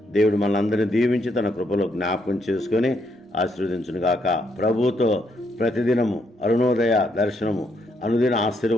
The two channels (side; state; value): both; normal; correlation 0.75